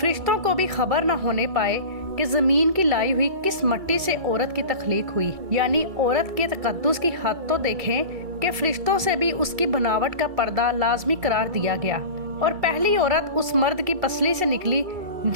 को भी खबर न होने पाए कि जमीन की लाई हुई किस मिट्टी से औरत की तख्लीक हुई। यानी औरत के तकद्दुस की हद तो देखें कि फरिश्तों से भी उसकी बनावट का पर्दा लाजमी करार दिया गया। और पहली औरत उस मर्द की पसली से निकली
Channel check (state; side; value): late; left; 2.3 ms